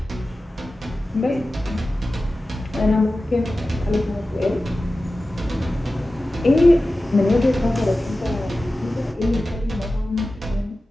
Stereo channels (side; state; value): both; normal; correlation 0.95